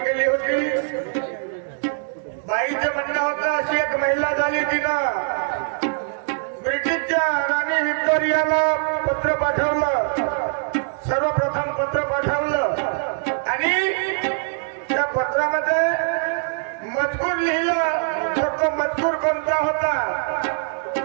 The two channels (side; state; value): left; silent; digital silence